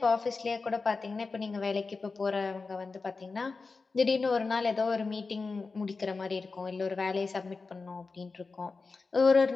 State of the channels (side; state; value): right; quieter; 4.2 dB